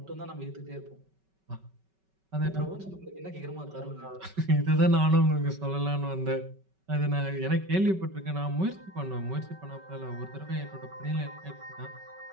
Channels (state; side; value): late; left; 5.3 ms